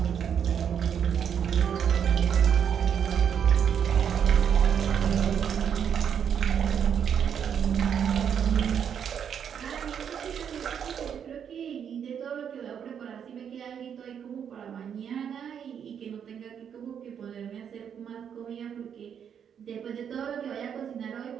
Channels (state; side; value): quieter; left; 8.1 dB